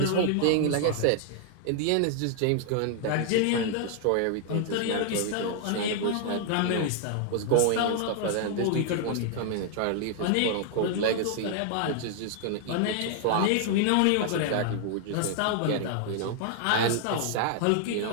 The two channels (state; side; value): different; both; correlation 0.00